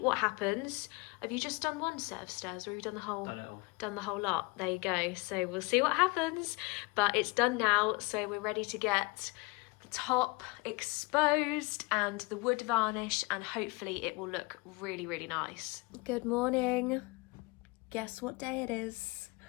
happens. Have you just done one set of stairs, or have you done the whole? Done it all. Done the whole lot. There you go. So we'll see what happens, but it's done now, so we're ready to get the top exposed and the wood varnish, and hopefully it will look really, really nice. Good morning. Guess what day it is?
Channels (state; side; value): quieter; right; 26.8 dB